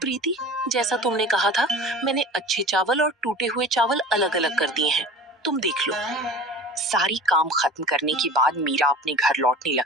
प्रीति, जैसा तुमने कहा था, मैंने अच्छे चावल और टूटे हुए चावल अलग अलग कर दिए हैं, तुम देख लो। सारी काम खत्म करने के बाद मीरा अपने घर लौटने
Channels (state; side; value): normal; both; correlation 0.39